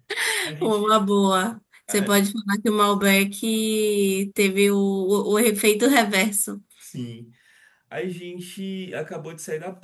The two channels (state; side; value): identical; both; correlation 1.00